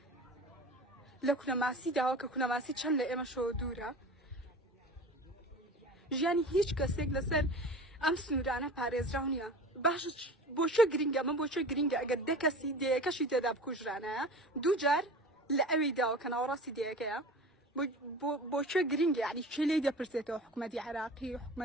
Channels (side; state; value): both; normal; correlation 0.36